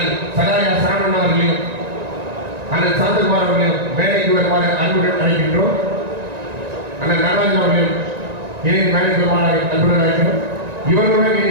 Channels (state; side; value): late; left; 1.9 ms